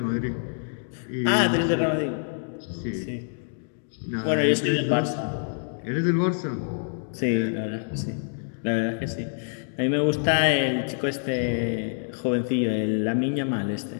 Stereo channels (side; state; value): right; silent; digital silence